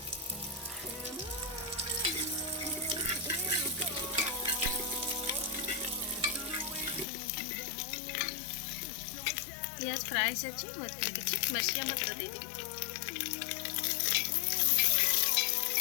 प्याज फ्राई अच्छी मरचिया मटर दे दी।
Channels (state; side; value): drops out; right; at 7.1 s